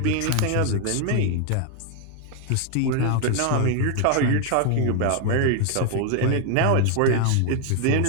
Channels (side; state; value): both; different; correlation 0.01